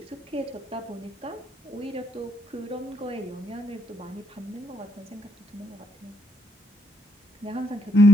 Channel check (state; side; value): normal; both; correlation 0.73